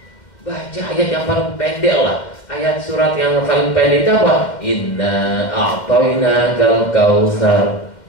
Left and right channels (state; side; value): late; right; 2.1 ms